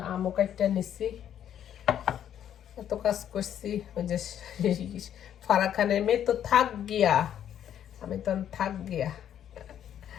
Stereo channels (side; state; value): right; quieter; 10.0 dB